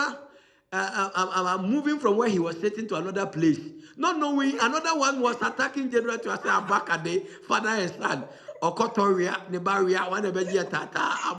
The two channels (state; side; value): identical; both; correlation 1.00